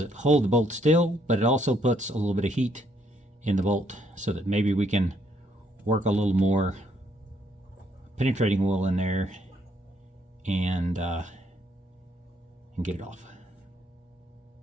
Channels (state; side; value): normal; both; correlation 0.70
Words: hold the bolt still, but it also puts a little bit of heat in the bolt so that maybe we can work a little more penetrating oil in there and get it off.